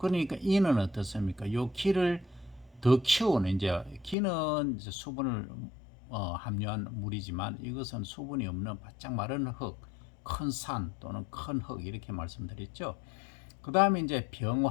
이는 어떻습니까? 요 기를 더 키우는, 이제 기는 이제 수분을 함유한 물이지만 이것은 수분이 없는 바짝 마른 흙, 큰 산 또는 큰 흙, 이렇게 말씀드렸죠. 그 다음에 이제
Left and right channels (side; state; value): right; drops out; at 4.2 s